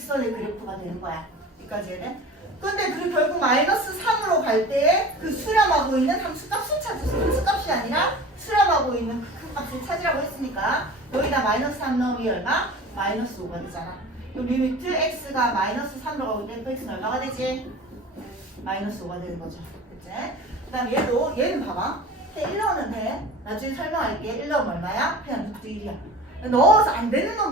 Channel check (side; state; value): both; normal; correlation 0.38